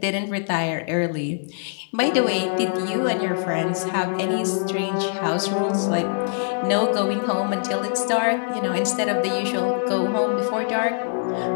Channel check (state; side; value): silent; right; digital silence